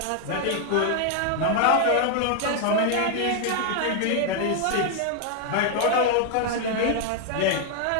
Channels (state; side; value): different; both; correlation 0.00